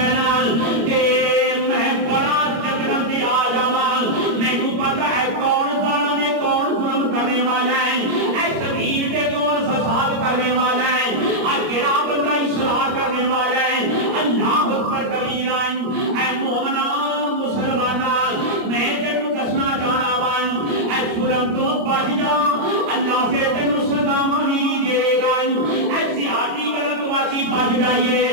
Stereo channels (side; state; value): left; late; 26 ms